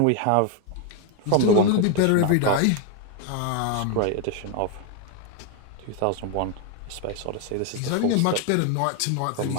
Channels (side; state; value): both; different; correlation 0.01